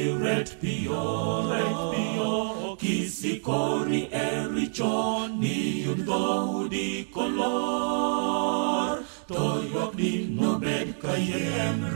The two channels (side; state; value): left; silent; digital silence